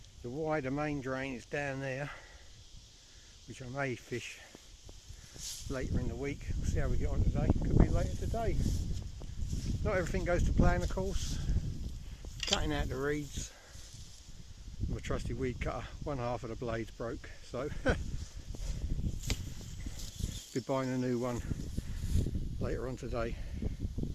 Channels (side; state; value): both; identical; correlation 1.00